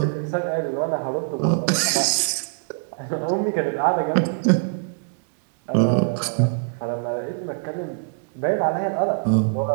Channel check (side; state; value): left; silent; digital silence